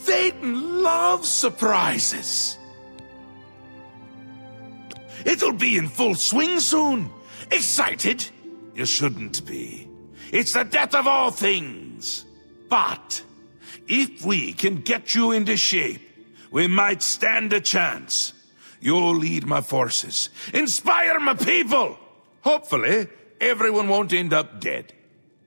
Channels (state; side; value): inverted; both; correlation -1.00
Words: Théoden loves surprises. It'll be in full swing soon. Excited? You shouldn't be. It's the death of all things. But if we can get you into shape, we might stand a chance. You'll lead my forces, inspire my people. Hopefully, everyone won't end up dead.